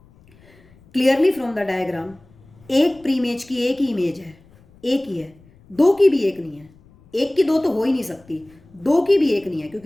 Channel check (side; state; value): left; noise; rumble, 28 dB below the sound